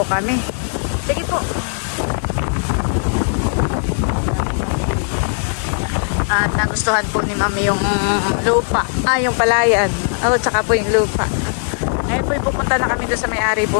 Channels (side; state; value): right; silent; 67 dB below the other